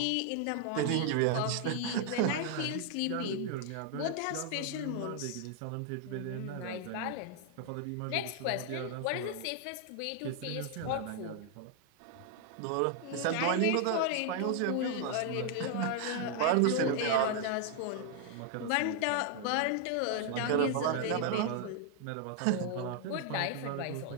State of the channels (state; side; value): different; both; correlation 0.00